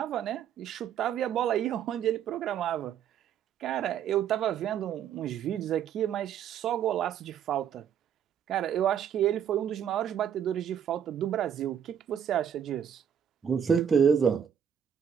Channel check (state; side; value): quieter; left; 8.8 dB